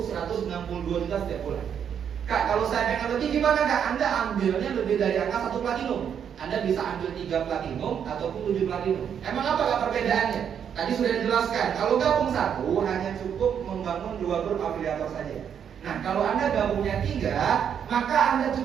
162 juta setiap bulan. Kak, kalau saya pengen lebih gimana Kak? Anda ambilnya lebih dari angka 1 platinum. Anda bisa ambil 3 platinum ataupun 7 platinum. Emang apa Kak perbedaannya? Tadi sudah dijelaskan, kalau gabung 1 hanya cukup membangun 2 grup afiliator saja. Nah, kalau Anda gabungnya 3, maka Anda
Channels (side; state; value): left; quieter; 8.2 dB